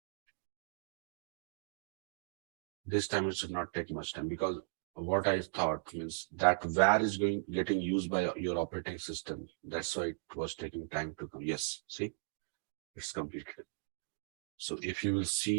This time it should not take much time, because what I thought means that where is getting used by your operating system. That's why it was taking time to come. Yes, see, it's completed. So if you will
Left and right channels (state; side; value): silent; left; digital silence